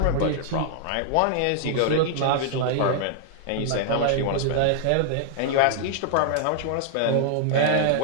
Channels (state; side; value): different; both; correlation -0.01